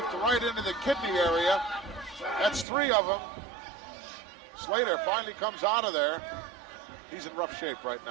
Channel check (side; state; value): left; drops out; at 2.7 s